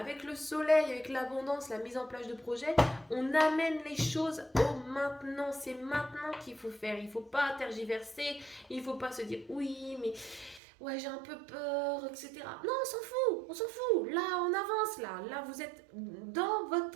le soleil, avec l'abondance, la mise en place de projets. On amène les choses au maintenant. C'est maintenant qu'il faut faire. Il ne faut pas tergiverser. Il ne faut pas se dire oui, mais ouais, j'ai un peu peur, etc. Non, on s'en fout, on s'en fout. Là, on avance, là. Là, vous êtes dans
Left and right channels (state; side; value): drops out; left; at 10.6 s